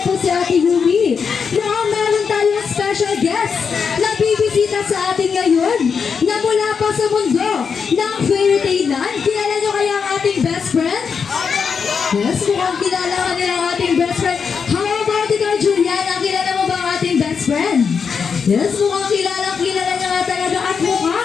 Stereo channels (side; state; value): right; quieter; 6.1 dB